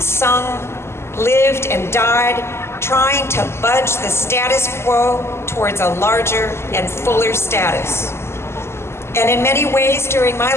sung, lived and died, trying to budge the status quo towards a larger and fuller status." And in many ways during my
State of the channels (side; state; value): right; late; 0.12 ms